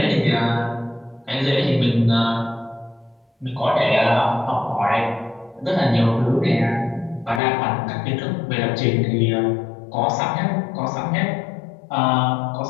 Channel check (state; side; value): drops out; right; at 7.4 s